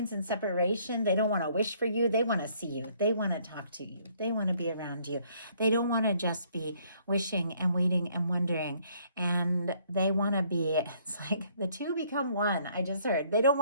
in separation, they don't want to wish for you. They want to see you. They want to talk to you. They want to be around you. They don't want to just be wishing and waiting and wondering. And they want to be, it's like the two become one. I just heard. They don't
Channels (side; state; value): both; inverted; correlation -0.64